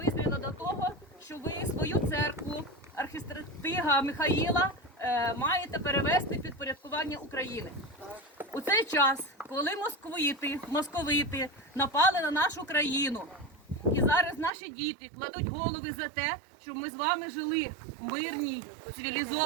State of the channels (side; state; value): left; drops out; at 14.5 s